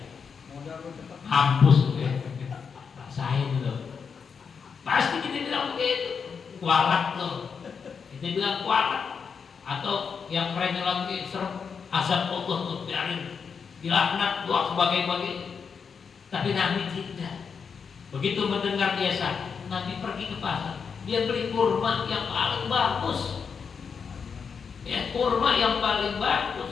Hampus ya. Rasain loh. Pasti kita bilang begitu, kualat loh. Kita bilang kualat. Atau yang kerennya lagi serem, azab Allah tuh biarin, dilaknat, doa sebagai-bagai. Tapi Nabi tidak. Begitu mendengar dia sakit, Nabi pergi ke pasar. Dia beli kurma yang paling bagus. Ya, kurma yang paling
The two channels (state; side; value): quieter; right; 6.1 dB